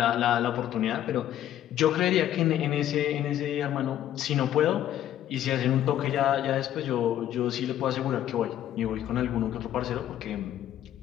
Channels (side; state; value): right; quieter; 11.7 dB